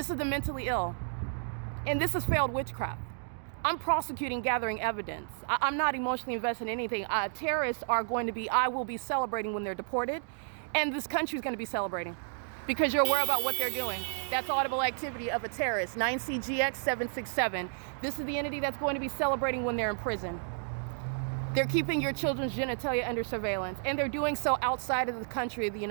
is the mentally ill. And this is failed witchcraft. I'm prosecuting, gathering evidence. I'm not emotionally invested in anything. Terrorists are going to be, I will be celebrating when they're deported. And this country is going to be celebrating because you're aware about what they're doing. That's audible activity of a terrorist. 9CGX767. This is the entity that's going to be celebrating when they're in prison. They're keeping your children's genitalia under surveillance, and they're doing so outside of the country of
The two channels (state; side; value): silent; left; digital silence